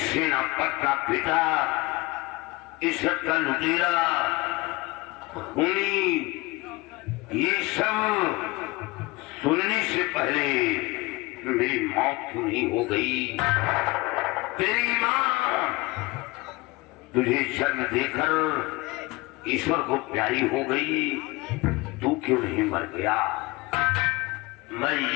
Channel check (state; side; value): quieter; right; 22.5 dB